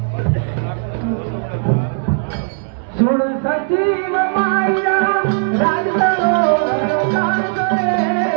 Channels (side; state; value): left; silent; 68 dB below the other